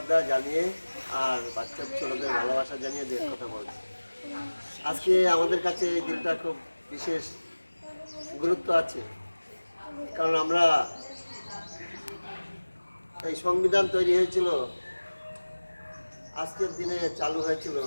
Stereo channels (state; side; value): inverted; both; correlation -1.00